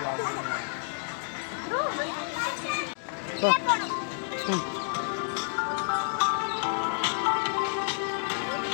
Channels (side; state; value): right; silent; digital silence